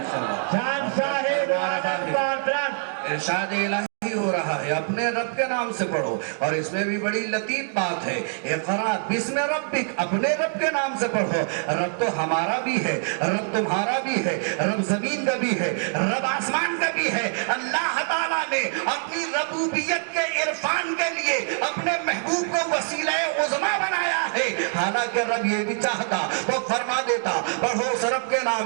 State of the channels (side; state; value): left; silent; 58 dB below the other